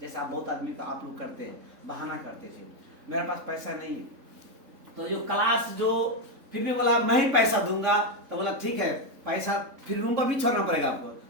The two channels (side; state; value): left; late; 3.6 ms